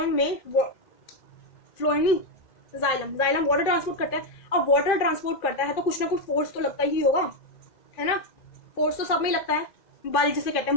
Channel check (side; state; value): right; late; 2.5 ms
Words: में फ्लोएम नहीं, जाइलम वाटर ट्रांसपोर्ट करता है। अब वाटर ट्रांसपोर्ट करता है तो कुछ ना कुछ फोर्स तो लगता ही होगा, है ना? फोर्स तो सब में लगता है, बल जिसे कहते